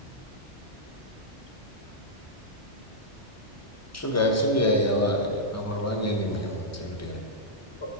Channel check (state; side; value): normal; both; correlation -0.09